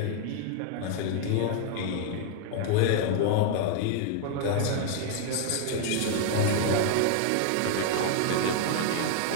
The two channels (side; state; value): both; different; correlation 0.00